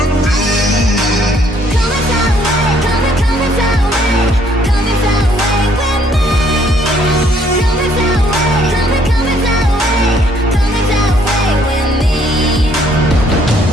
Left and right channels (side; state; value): both; normal; correlation 0.65